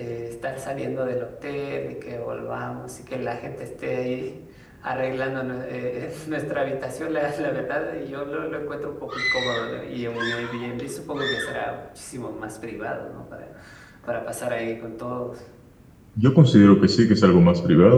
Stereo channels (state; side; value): identical; both; correlation 1.00